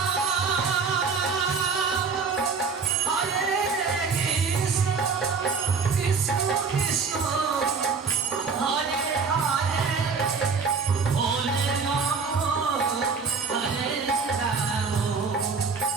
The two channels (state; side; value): quieter; left; 5.1 dB